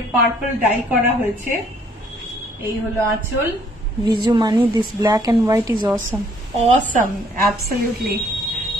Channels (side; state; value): both; normal; correlation 0.63